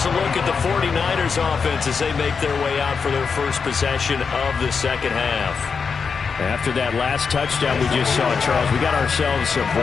a look at the 49ers offense as they make their way out for their first possession of the second half. After that last touchdown we just saw, Charles, we got ourselves a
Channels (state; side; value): quieter; right; 5.6 dB